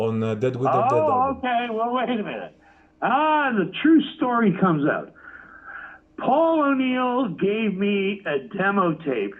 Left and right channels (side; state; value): both; identical; correlation 1.00